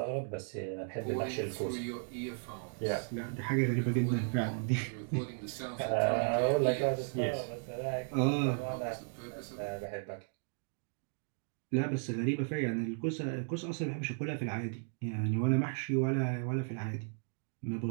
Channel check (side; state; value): left; silent; 54 dB below the other